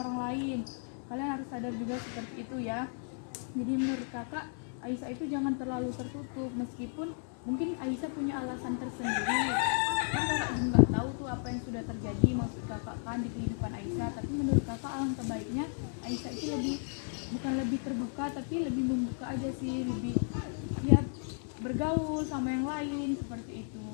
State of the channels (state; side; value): silent; right; 55 dB below the other